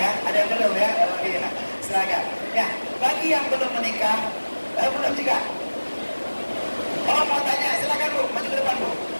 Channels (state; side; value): inverted; both; correlation -1.00